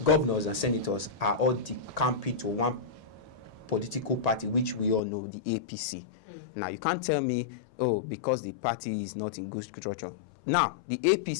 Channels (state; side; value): drops out; right; at 5.0 s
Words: governors and senators are all decamping to one political party, which we all know, the APC. Now, you can't tell me, oh, because the party is not in good structure. Now, the